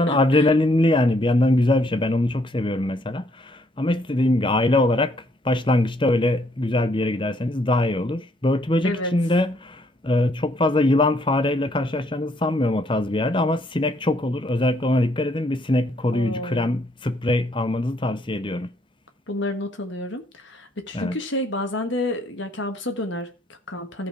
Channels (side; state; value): both; normal; correlation 0.68